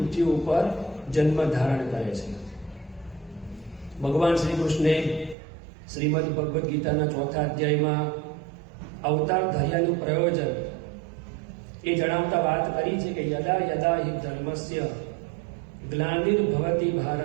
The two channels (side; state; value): left; drops out; at 5.4 s